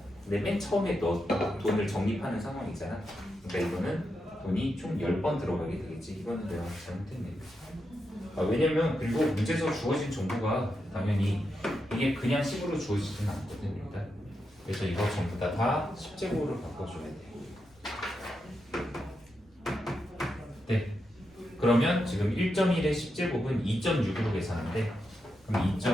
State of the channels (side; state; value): both; normal; correlation 0.85